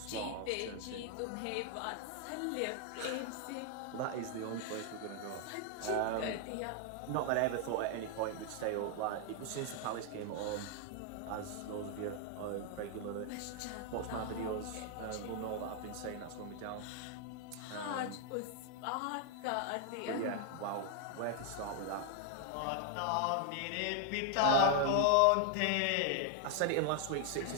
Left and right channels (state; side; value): different; both; correlation 0.00